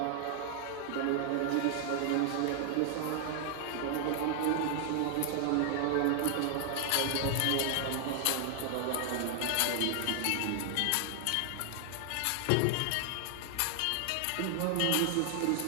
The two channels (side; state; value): both; different; correlation 0.00